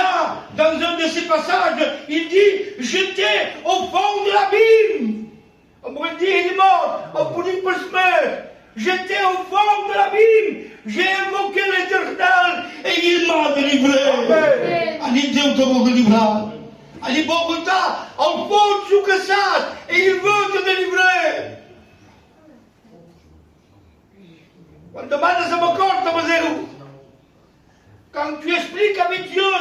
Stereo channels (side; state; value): both; identical; correlation 1.00